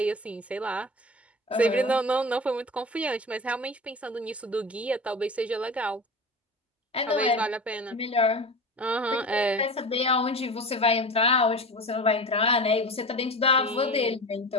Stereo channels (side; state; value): both; normal; correlation 0.31